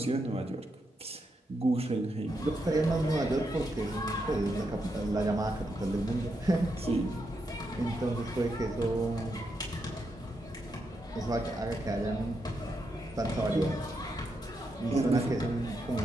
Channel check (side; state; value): both; normal; correlation 0.83